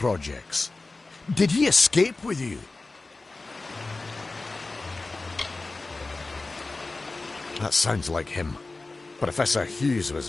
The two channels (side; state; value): right; quieter; 3.4 dB